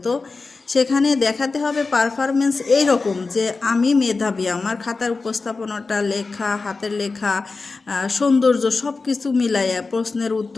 তো সেখানে দেখাতে হবে পারফরমেন্স এইরকম যে আমি মেধাবী, আমার খাতার উপস্থাপনাটা, লেখা, হাতের লেখা, সৌন্দর্য সব কিছু মিলাইয়া প্রশ্নের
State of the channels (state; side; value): quieter; right; 4.0 dB